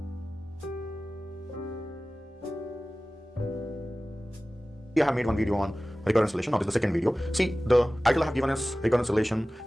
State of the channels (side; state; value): both; normal; correlation 0.97